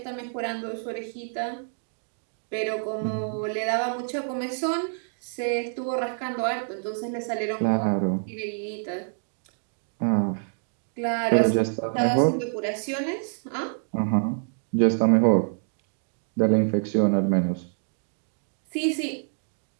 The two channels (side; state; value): left; silent; digital silence